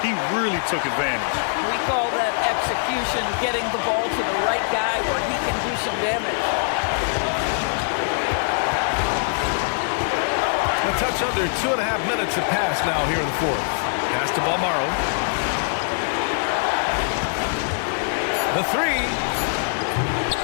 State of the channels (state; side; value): silent; right; digital silence